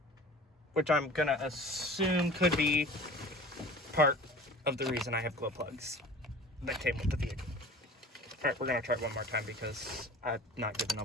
which I'm gonna assume could be part of the reason I have glow plugs that came with the vehicle. Alright, we're gonna try it one more time because I'm not giving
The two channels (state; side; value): normal; both; correlation 0.42